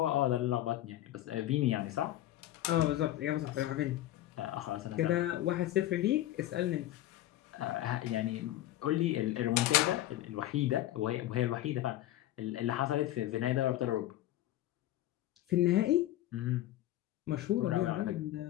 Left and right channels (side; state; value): right; quieter; 14.3 dB